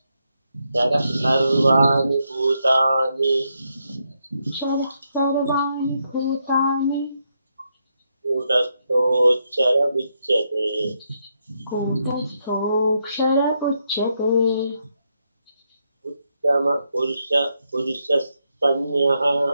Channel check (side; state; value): both; inverted; correlation -0.80